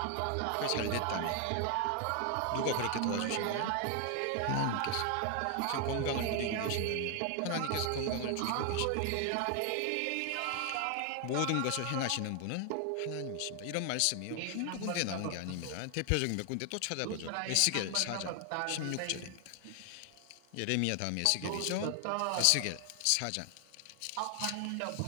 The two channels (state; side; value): different; both; correlation 0.00